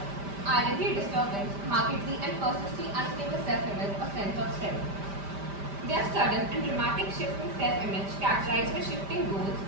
identity disturbance, markedly and persistently unstable self-image or sense of self. They are sudden and dramatic shifts in self-image characterized by shifting goals,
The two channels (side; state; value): left; late; 5.1 ms